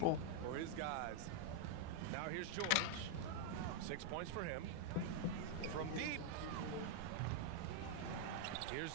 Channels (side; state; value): both; different; correlation 0.00